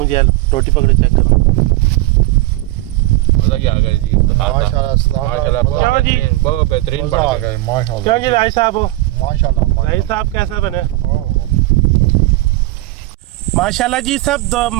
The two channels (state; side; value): quieter; left; 18.3 dB